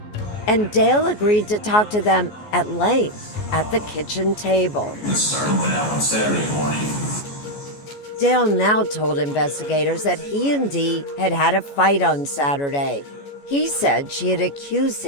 and Dale agreed to talk to them at length at the kitchen table. This started on Saturday morning. Dale now told investigators that he and Dee had had a fight on Saturday. He said she had accused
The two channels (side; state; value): right; late; 14 ms